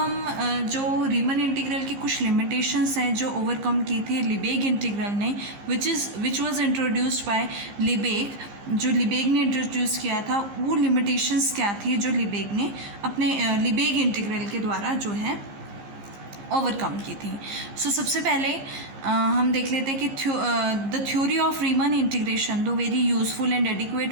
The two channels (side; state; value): left; late; 15 ms